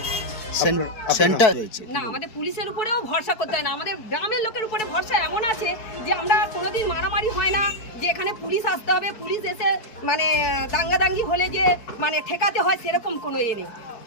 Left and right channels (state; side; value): late; right; 4.6 ms